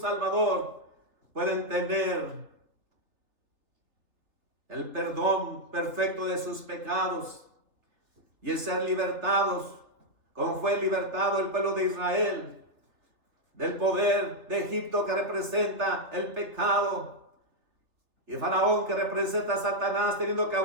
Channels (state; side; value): late; left; 3.3 ms